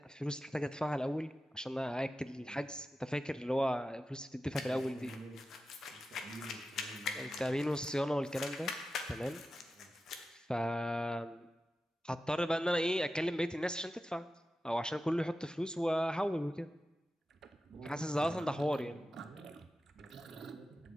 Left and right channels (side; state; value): both; normal; correlation 0.93